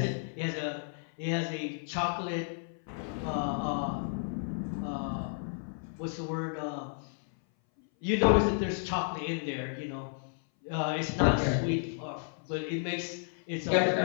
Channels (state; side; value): silent; right; 56 dB below the other